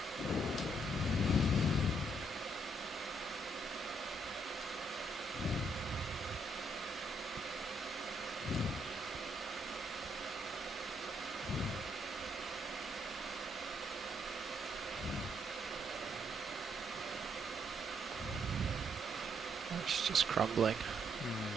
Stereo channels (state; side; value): normal; both; correlation 0.72